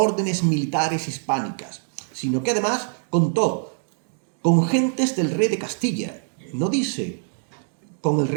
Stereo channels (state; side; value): silent; left; digital silence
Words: militares hispánicas, sino que además contó con gentes del rey de Castilla. No dice con el